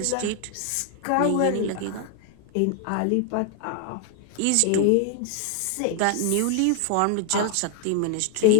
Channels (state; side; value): different; both; correlation 0.00